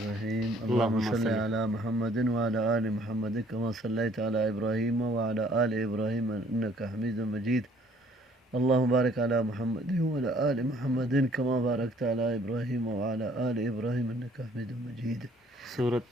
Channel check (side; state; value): both; normal; correlation 0.60